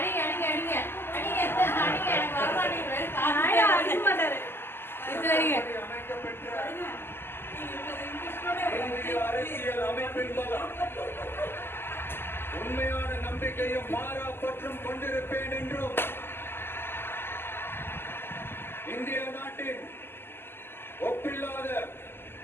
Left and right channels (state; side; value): late; right; 0.11 ms